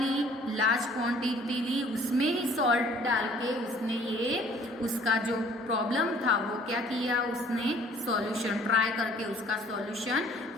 लार्ज क्वांटिटी ली. उसमें ही सॉल्ट डाल के उसने ये उसका जो प्रॉब्लम था वो क्या किया? उसने सॉल्यूशन ट्राई करके उसका सॉल्यूशन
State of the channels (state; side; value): normal; both; correlation 0.55